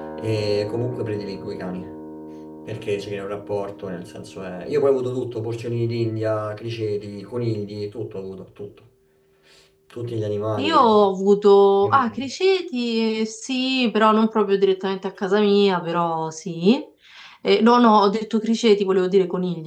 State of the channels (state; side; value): identical; both; correlation 1.00